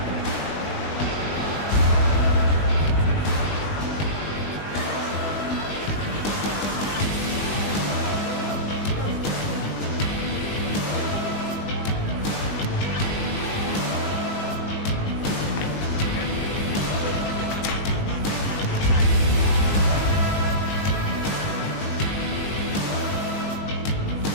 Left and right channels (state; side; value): late; right; 20 ms